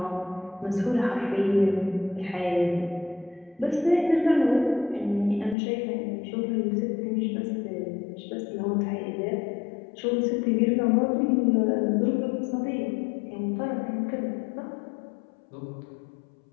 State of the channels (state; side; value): drops out; right; at 5.6 s